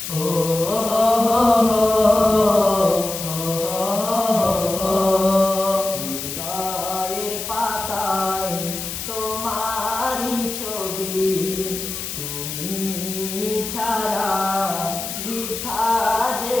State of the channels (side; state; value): left; noise; hiss, 6 dB below the sound